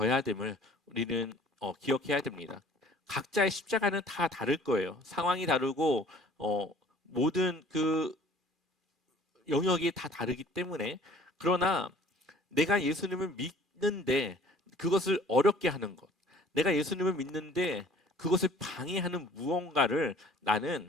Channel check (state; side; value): normal; both; correlation 0.52